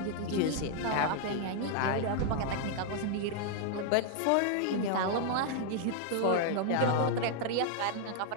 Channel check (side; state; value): both; different; correlation 0.00